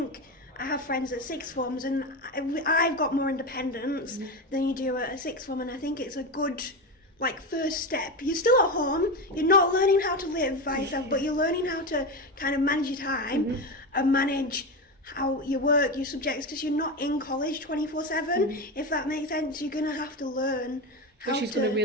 I have friends at sixth forms, and I've got more independence than you do at a sixth form, and I think it's a good first step. You're still at home, you're not learning how to live by yourself, but you're learning how to kind of manage your time and manage how you work, your subjects, because you're not in college 24/7, if that makes sense. You're going to have to learn how which is to... going to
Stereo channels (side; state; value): both; normal; correlation 0.18